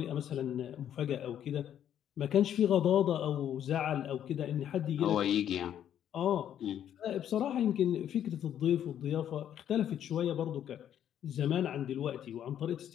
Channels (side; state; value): right; quieter; 10.2 dB